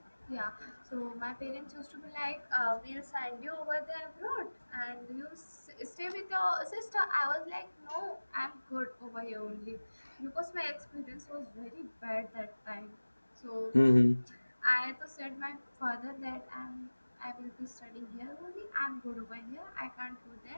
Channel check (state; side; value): inverted; both; correlation -1.00